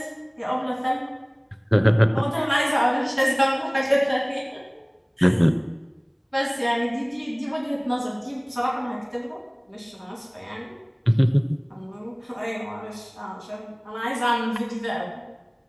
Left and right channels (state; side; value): identical; both; correlation 1.00